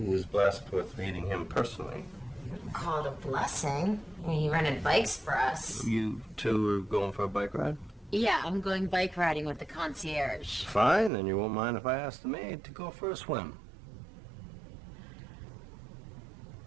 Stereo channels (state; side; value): drops out; left; at 11.1 s